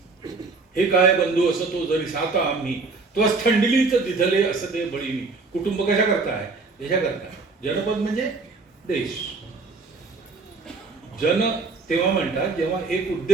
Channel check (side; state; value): left; quieter; 4.0 dB